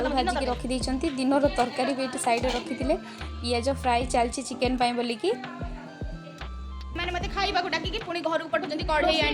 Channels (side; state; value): both; identical; correlation 1.00